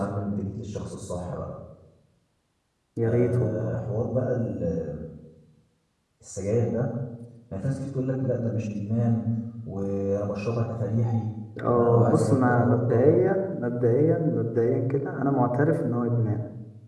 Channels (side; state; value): both; identical; correlation 1.00